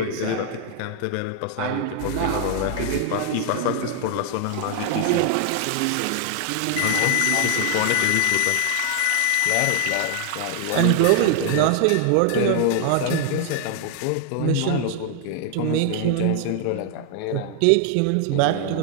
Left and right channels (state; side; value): different; both; correlation 0.00